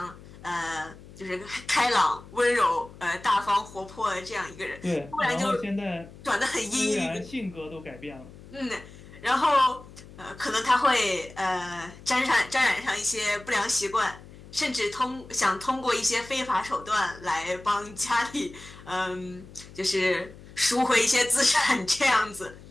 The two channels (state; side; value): noise; left; hum, 19 dB below the sound